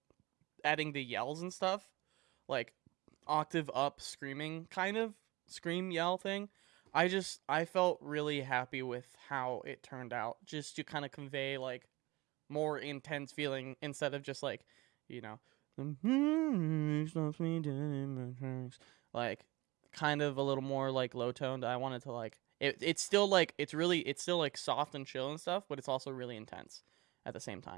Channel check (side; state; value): left; quieter; 21.7 dB